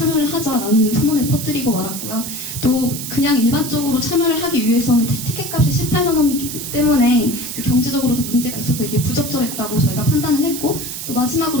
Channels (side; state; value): right; noise; hiss, 7 dB below the sound